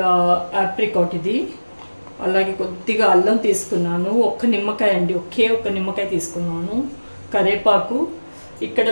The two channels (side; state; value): both; inverted; correlation -1.00